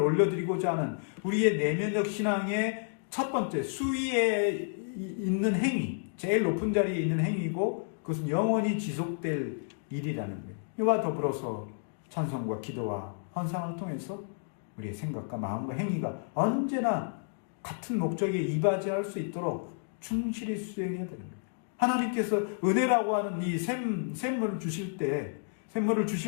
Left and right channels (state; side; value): silent; right; digital silence